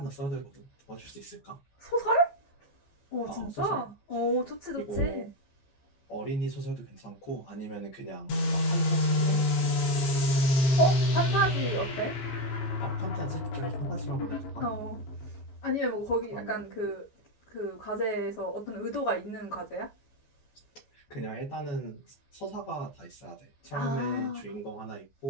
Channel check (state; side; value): late; right; 15 ms